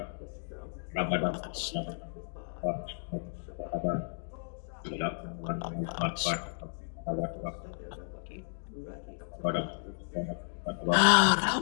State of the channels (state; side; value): silent; right; digital silence